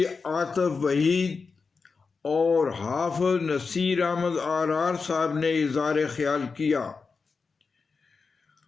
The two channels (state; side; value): quieter; right; 4.8 dB